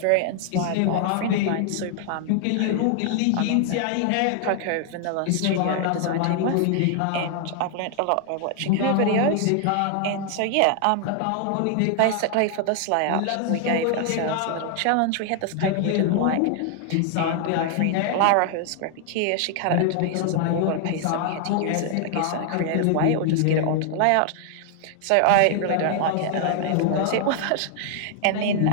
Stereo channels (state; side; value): different; both; correlation 0.00